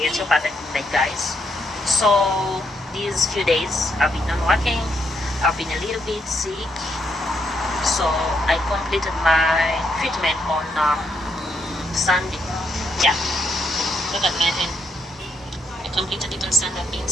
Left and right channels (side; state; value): both; normal; correlation 0.76